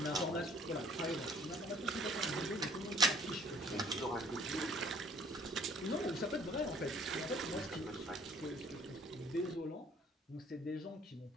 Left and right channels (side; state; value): both; normal; correlation 0.56